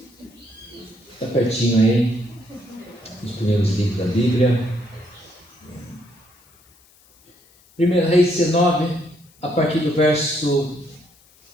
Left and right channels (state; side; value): noise; left; hiss, 30 dB below the sound